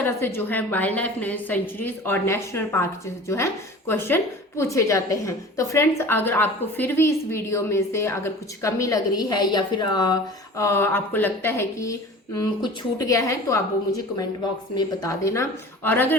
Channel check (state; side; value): normal; both; correlation 0.40